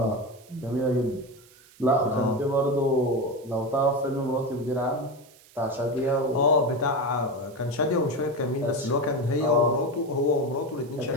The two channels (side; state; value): right; noise; hiss, 26 dB below the sound